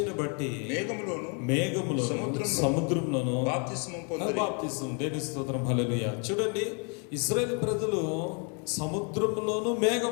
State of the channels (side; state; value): right; quieter; 36.4 dB